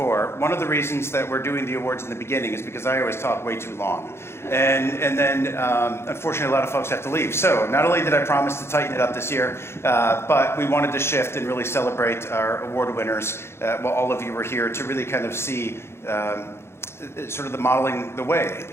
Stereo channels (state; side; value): late; right; 0.12 ms